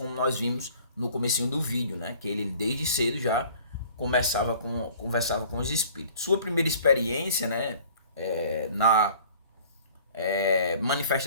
nós vimos no comecinho do vídeo, né? Que ele desde cedo já conversava com os espíritos. Sua primeira experiência, né? Na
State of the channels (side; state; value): both; inverted; correlation -0.50